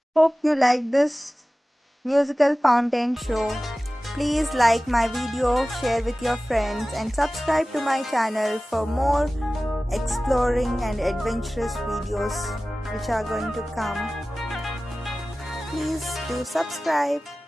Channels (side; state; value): both; normal; correlation 0.97